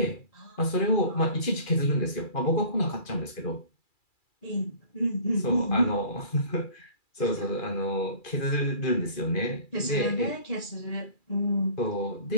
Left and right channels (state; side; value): late; right; 2.4 ms